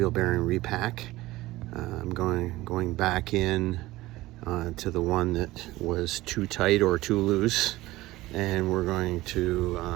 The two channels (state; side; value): quieter; left; 18.1 dB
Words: bearing repack. I'm going back in to the one that was too tight or too loose, and we're going to